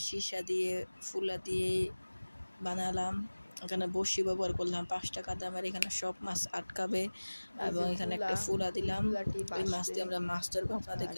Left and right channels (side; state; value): both; inverted; correlation -1.00